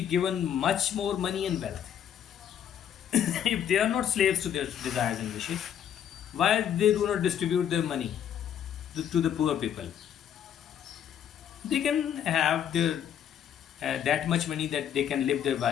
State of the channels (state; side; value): quieter; right; 9.4 dB